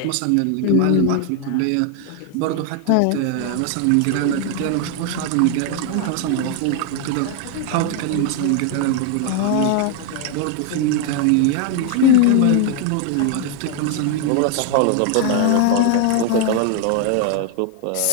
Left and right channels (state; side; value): different; both; correlation 0.00